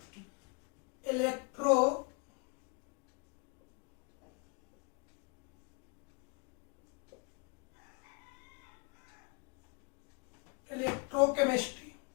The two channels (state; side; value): quieter; right; 34.1 dB